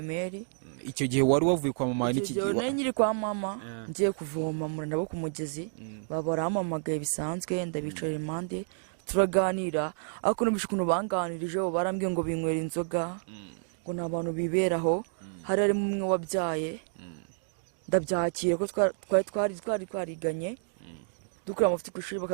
Icyo gihe wari wavuye kwa mama n'iki gihe? Nari nyiri kwa mama ngiye kuvoma muri nabo ku mugezi barampamagaye bisanzwe ndabicara impande turaganira ariko numvise ukuntu banganirije barambwiye ngo binywera inzoga ngo ni abantu biberaho hari harimo umwe wabyaye ndabyakira ko twari twariganye dukora amafuti ku ishuri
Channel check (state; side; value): silent; left; digital silence